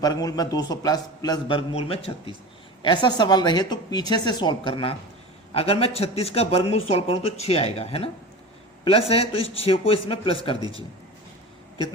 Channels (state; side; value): normal; both; correlation 0.31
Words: वर्गमूल में 200 प्लस वर्गमूल में 36। ऐसा सवाल रहे तो पीछे से सॉल्व करना। अगर मैं 36 का वर्गमूल सॉल्व करूं तो 6 आएगा, है ना। प्लस है तो इस 6 को इसमें प्लस कर दीजिए,